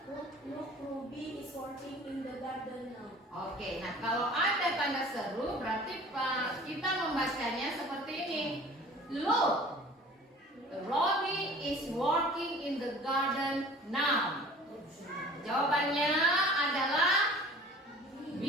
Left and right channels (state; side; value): normal; both; correlation 0.45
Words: working in the garden now. Oke, nah kalau ada tanda seru berarti kita membacanya seperti ini. Look, Robbie is working in the garden now. Jawabannya adalah B.